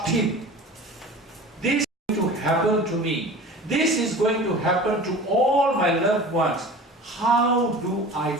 him. This is going to happen to me. This is going to happen to all my loved ones. How do I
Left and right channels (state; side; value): normal; both; correlation 0.38